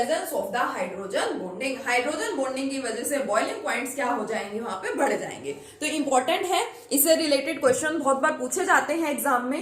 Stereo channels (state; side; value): identical; both; correlation 1.00